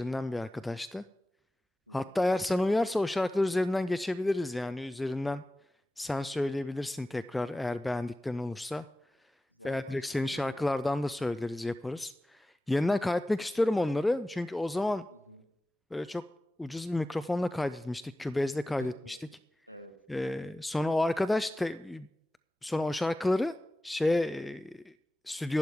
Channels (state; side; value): normal; both; correlation 0.96